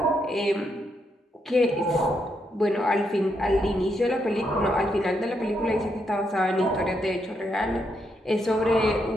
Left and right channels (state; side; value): normal; both; correlation 0.79